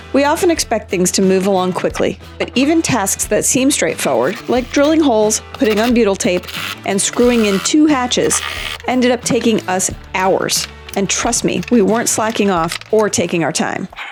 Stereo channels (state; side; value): identical; both; correlation 1.00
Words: We often expect things to move along quickly, but even tasks that seem straightforward, like drilling holes, putting on butyl tape, and screwing in 2 hatches, ended up taking us hours. And trust me, we weren't slacking off or taking our time.